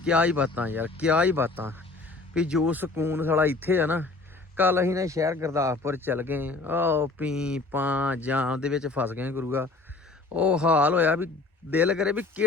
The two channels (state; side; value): quieter; right; 3.5 dB